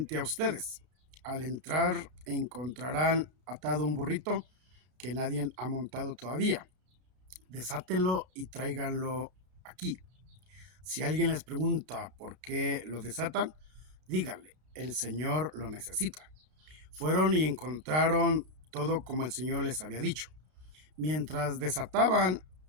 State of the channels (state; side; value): late; left; 32 ms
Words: a ustedes. Al entrar encontrarán atado un burrito que nadie ha montado todavía. Desátenlo y tráiganlo aquí. Si alguien les pregunta por qué lo desatan, díganle: el Señor lo necesita. Fueron y encontraron todo como el Señor les había dicho. Mientras desataban